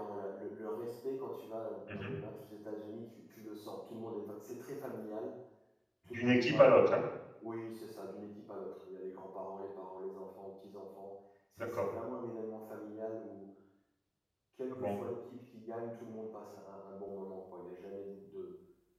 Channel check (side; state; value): both; identical; correlation 1.00